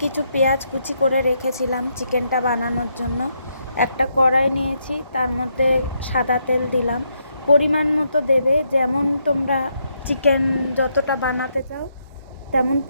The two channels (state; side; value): inverted; both; correlation -0.78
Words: কিছু পেঁয়াজ কুচি করে রেখেছিলাম চিকেনটা বানানোর জন্য। একটা কড়াই নিয়েছি, তার মধ্যে সাদা তেল দিলাম, পরিমাণ মতো দেবে, যেমন তোমরা চিকেন যতটা বানাতে চাও তেমন